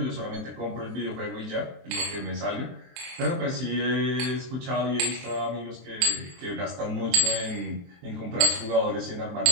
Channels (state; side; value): late; left; 23 ms